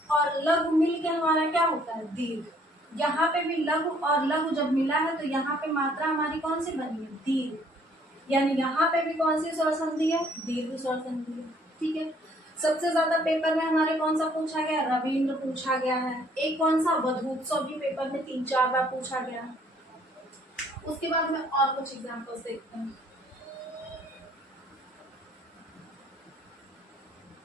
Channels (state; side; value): normal; both; correlation 0.62